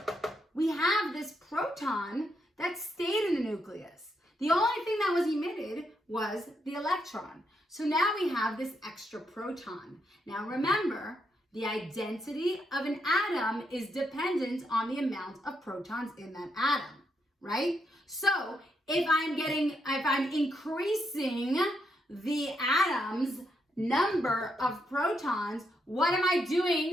We have this proton that stayed in the nucleus. The only thing that was emitted was the electron. So now we have this extra proton. Now remember, the identity of an atom is dependent on the amount of protons in that atom, right? So if I'm increasing the atom's number of protons, what am I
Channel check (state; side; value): normal; both; correlation 0.80